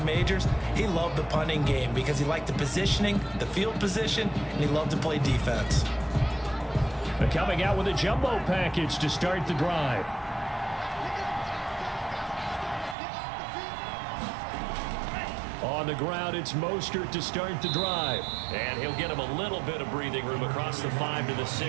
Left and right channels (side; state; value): left; drops out; at 13.0 s